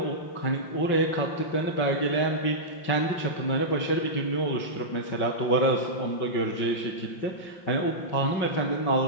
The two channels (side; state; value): right; late; 5.4 ms